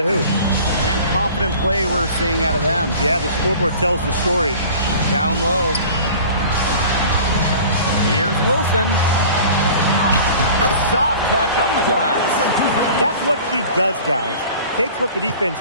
hoop. And confident play we're seeing out of them. Yeah, the scoreboard tells the story. Down low. Here's Wilson. Soft touch off the glass. That's what she does, guys. Takes what the defense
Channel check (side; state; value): both; inverted; correlation -0.43